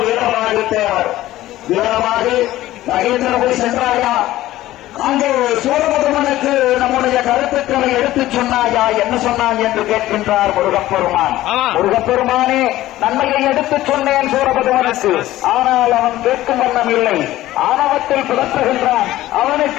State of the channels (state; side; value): quieter; right; 15.4 dB